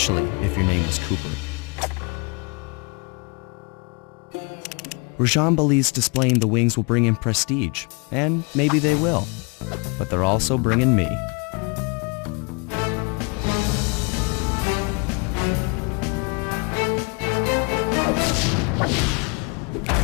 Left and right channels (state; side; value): quieter; right; 32.2 dB